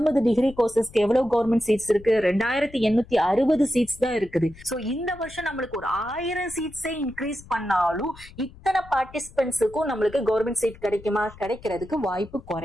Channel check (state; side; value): noise; left; rumble, 20 dB below the sound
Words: டிகிரி கோர்சஸ்க்கு எவ்வளவு கவர்மெண்ட் சீட்ஸ் இருக்கு? 2860 சீட்ஸ் தான் இருக்குது. சோ இந்த வருஷம் நம்மளுக்கு ஒரு 1000 சீட்ஸே இன்க்ரீஸ் பண்ணாலும் இத்தனை பார்ட்டிசிபென்ட்ஸுக்கும் நம்மளுக்கு கவர்மெண்ட் சீட் கிடைக்குமா? கிடைக்கிறதுக்கு வாய்ப்பு